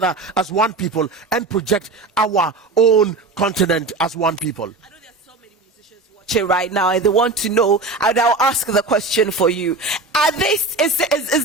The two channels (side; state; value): left; quieter; 3.5 dB